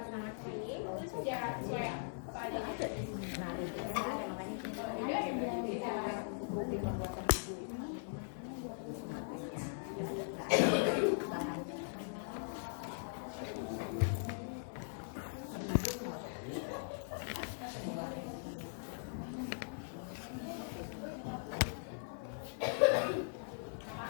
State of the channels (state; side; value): silent; right; 51 dB below the other